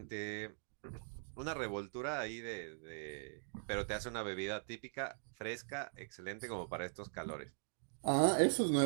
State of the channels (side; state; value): left; silent; digital silence